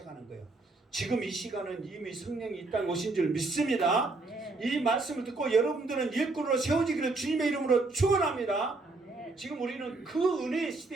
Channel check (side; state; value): left; quieter; 3.4 dB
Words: 거예요. 지금 이 시간은 이미 성령이 이 땅에 오신 줄 믿습니다. 아멘. 이 말씀을 듣고 여러분들은 일꾼으로 세워지기를 주님의 이름으로 축원합니다. 아멘. 지금 우리는 그 은혜의